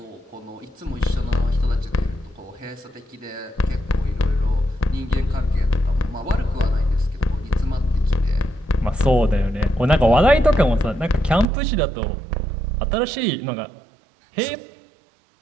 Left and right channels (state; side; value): drops out; left; at 11.5 s